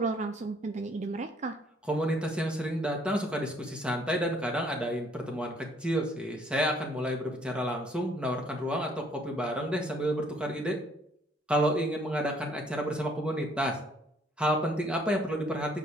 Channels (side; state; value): both; normal; correlation 0.63